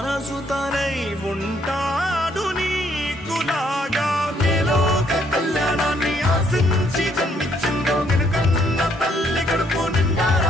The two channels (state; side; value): normal; both; correlation 0.69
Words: తనై ఉంటాడు నీకులాగా. ఆశించి జన్మించిందో వెనుకన్న తల్లి కడుపు